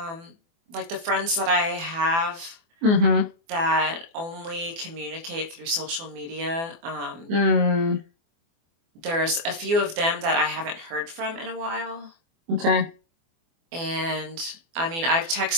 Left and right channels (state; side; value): late; left; 24 ms